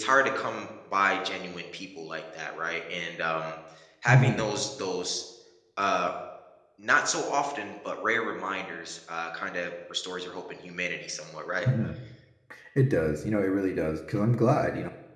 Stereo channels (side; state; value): both; identical; correlation 1.00